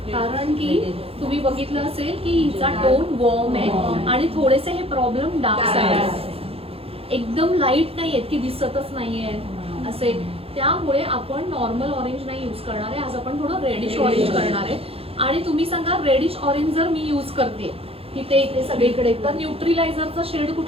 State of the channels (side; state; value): left; late; 0.28 ms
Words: कारण की तुम्ही बघितलं असेल की हिचा टोन वॉर्म आहे आणि थोडेसे हे प्रॉब्लेम डार्क साईड, एकदम लाईट नाहीयेत की दिसतच नाहीये असे. त्यामुळे आपण नॉर्मल ऑरेंज नाही युज करणार आहे, आज आपण थोडं रेडिश ऑरेंज करणार आहे. आणि तुम्ही सांगा, रेडिश ऑरेंज जर मी युज करते इथे इथे सगळीकडे, तर न्यूट्रिलायझरचा शेड